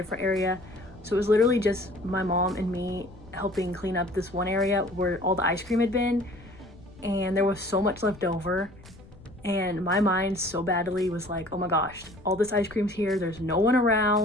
area. So it was literally just my mom and me helping clean up this one area where all the ice cream had been, and there was so much left over, and my mind so badly was oh my gosh, all this ice cream's here, there's no one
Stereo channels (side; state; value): left; noise; rumble, 22 dB below the sound